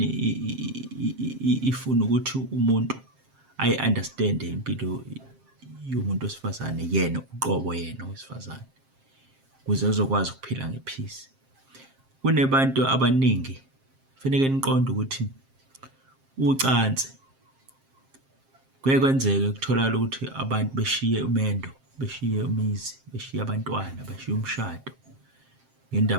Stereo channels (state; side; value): late; left; 7.5 ms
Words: ifuna ukuthi umuntu ayi-understand impilo yomuntu wesifazane, yena uqobo yena owesifazane, ukuze uzokwazi ukuphila ngephisi. Kunebantu abaningi kufanele niqonde ukuthi ucansi kuye kwenzeke kutholakala ukuthi abantu beshiye umendo, beshiye umuzi, beshiye abantwana, beshiye umshado